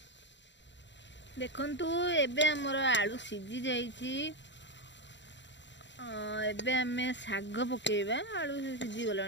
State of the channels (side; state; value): right; late; 0.52 ms